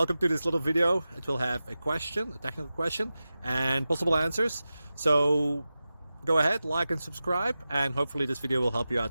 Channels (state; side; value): inverted; both; correlation -0.94